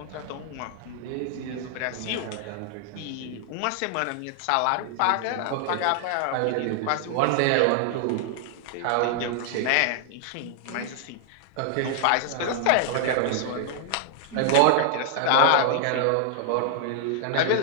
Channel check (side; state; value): both; different; correlation 0.00